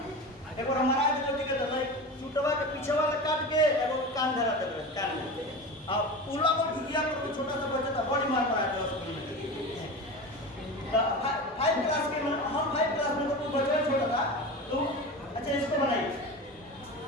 एक बार हमारा जो के तो चुटवा के पीछे वाला काट के एगो कान धरा दे कान में, अब उला को भिगिया पर छोटा सा बच्चा था बड़ी मार पड़ा था स्कूल में। 5 क्लास के हम 5 क्लास में तो कोई बच्चा छोटा था, तो अच्छा इसको बनाइए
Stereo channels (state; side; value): normal; both; correlation 0.29